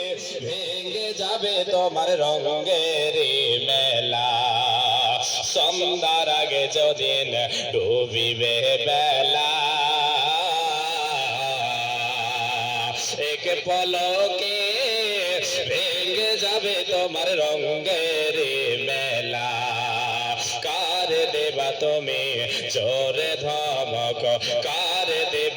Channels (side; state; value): both; identical; correlation 1.00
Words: ভেঙে যাবে তোমার রঙের মেলা, সন্ধ্যার আগে যদিন ডুবিবে বেলা, এক পলকে ভেঙে যাবে তোমার রঙের মেলা। কার দেবা তুমি জোরে ধমক, কার